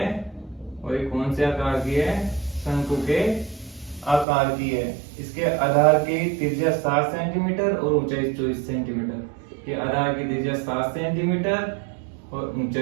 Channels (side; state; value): left; drops out; at 4.2 s